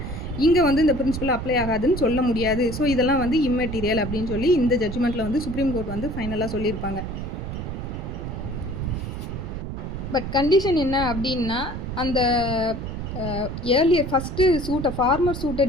இங்கே வந்து இந்த பிரின்சிபல் அப்ளை ஆகாதுன்னு சொல்ல முடியாது. ஸோ இதெல்லாம் வந்து இம்மெட்டீரியல் அப்படின்னு சொல்லி இந்த ஜட்ஜ்மெண்ட்டில் வந்து சுப்ரீம் கோர்ட் வந்து ஃபைனலாக சொல்லியிருப்பாங்க. பட் கண்டிஷன் என்ன அப்படின்னா, அந்த ஏர்லியர் ஃபஸ்ட்டு சூட்டை ஃபார்மர் சூட்டை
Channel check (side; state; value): right; noise; rumble, 6 dB below the sound